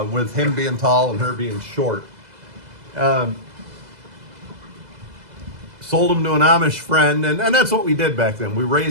with him being tall and her being short. Sold them to an Amish friend, and that's what we did back then. We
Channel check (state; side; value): late; left; 2.0 ms